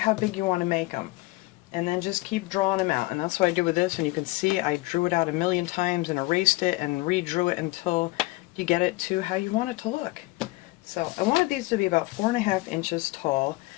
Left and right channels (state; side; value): quieter; right; 21.7 dB